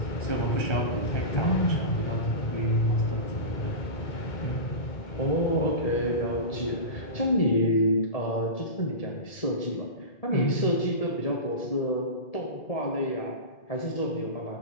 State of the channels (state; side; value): late; right; 1.7 ms